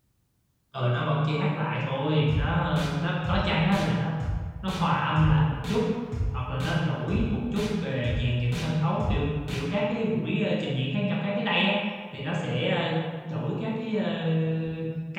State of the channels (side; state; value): both; identical; correlation 1.00